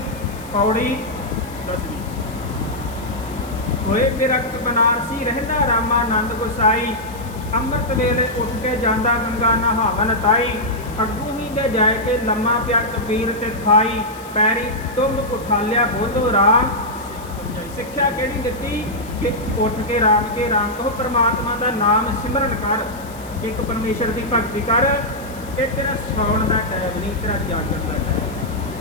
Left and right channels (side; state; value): left; noise; hiss, 20 dB below the sound